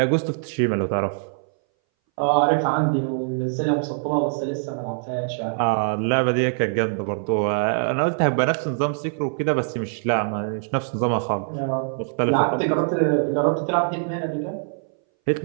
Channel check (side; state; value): left; silent; 61 dB below the other